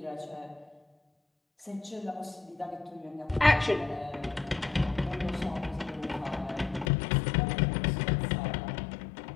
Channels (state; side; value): drops out; right; at 6.9 s